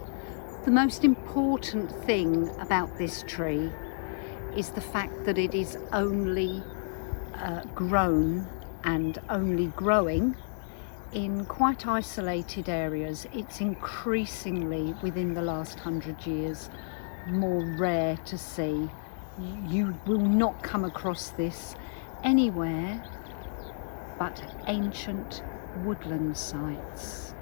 The most important thing about this tree is the fact that it is only grown and only growing in quite isolated areas. It's increasingly, within the last 100 years, more rare to see. You will not come across this anywhere but ancient woodland sites.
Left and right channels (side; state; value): right; silent; digital silence